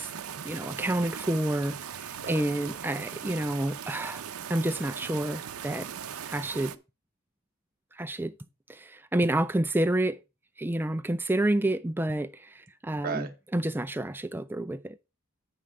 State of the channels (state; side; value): normal; both; correlation 0.81